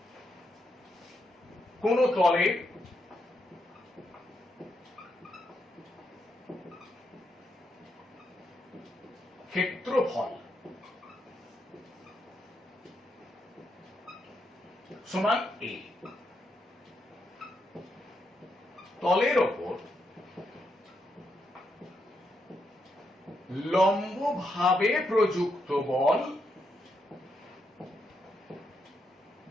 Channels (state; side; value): normal; both; correlation 0.81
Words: কোন তলে ক্ষেত্রফল সমান a, তলের ওপর লম্বভাবে প্রযুক্ত বল